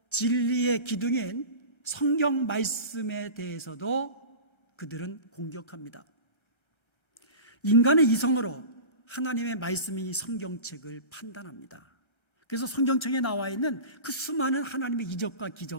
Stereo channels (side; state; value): right; late; 1.3 ms